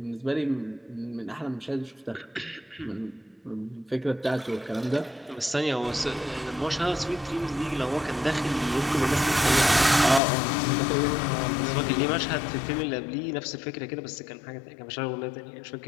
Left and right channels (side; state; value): right; drops out; at 10.2 s